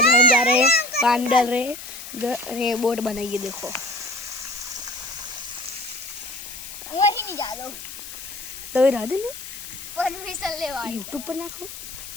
हम जा रहे हैं, पानी डाल रहे हैं, बोट बनाइए। देखो वही नहीं जा लो तो इधर नहीं परमिशन ले वाली यूट्यूब पर नाखो।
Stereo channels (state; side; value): noise; left; hiss, 11 dB below the sound